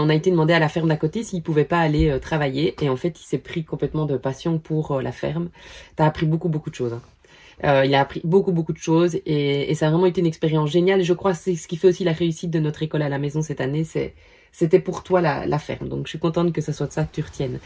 a été demandé à la ferme d'à côté s'il ne pouvait pas aller travailler. Et en fait, il s'est pris complètement de passion pour la ferme. Tu as appris beaucoup de choses. Hein. Il a appris beaucoup de choses et ça a vraiment été une expérience géniale. Et je crois que c'est ce qui fait aussi la réussite de notre école à la maison cette année. C'était pour toi la ferme. Donc, je suis contente que ça soit de ça que tu retiennes.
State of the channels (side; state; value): both; identical; correlation 1.00